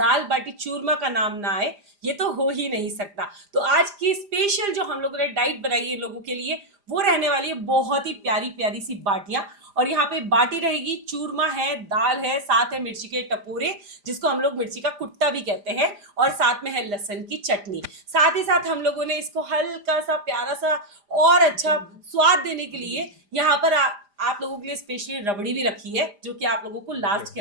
बाटी चूरमा का नाम ना आए, ये तो हो ही नहीं सकता। तो आज की स्पेशल जो हम लोगों ने डाइट बनाई है लोगों के लिए, वो रहने वाली है बहुत ही प्यारी प्यारी सी बाटियां। और यहाँ पे बाटी रहेगी, चूरमा है, दाल है, साथ है मिर्ची के टपोरे जिसको हम लोग मिर्ची का कुट्टा भी कहते हैं, और साथ में है लहसुन की चटनी। साथ ही साथ हम लोगों ने इसको हल्का सा प्यारा सा और अच्छा स्वाद देने के लिए यहाँ पर आप लोगों के लिए स्पेशली रबड़ी भी रखी है, जो कि आप लोगों को लास्ट के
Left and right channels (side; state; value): left; late; 5.0 ms